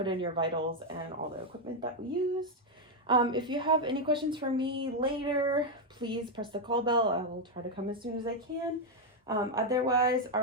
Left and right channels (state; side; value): normal; both; correlation 0.02